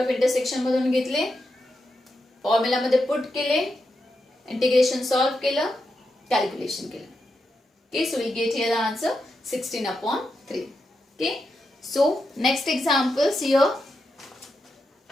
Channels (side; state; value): both; normal; correlation 0.86